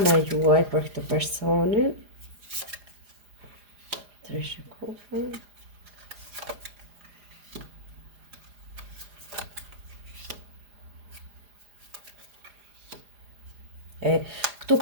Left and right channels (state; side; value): late; left; 4.9 ms